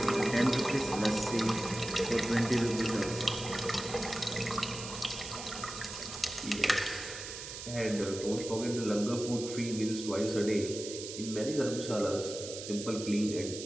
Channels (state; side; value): noise; right; hiss, 9 dB below the sound